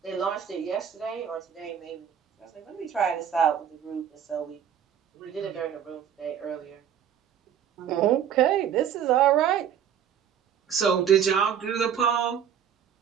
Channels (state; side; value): quieter; left; 8.8 dB